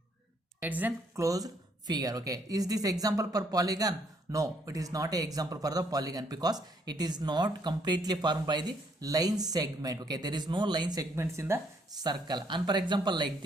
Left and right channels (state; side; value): normal; both; correlation 0.69